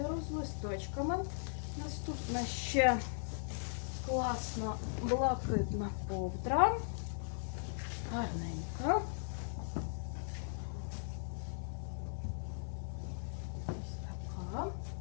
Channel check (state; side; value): silent; right; digital silence